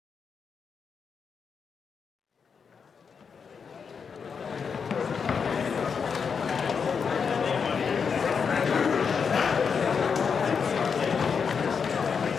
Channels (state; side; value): quieter; right; 6.1 dB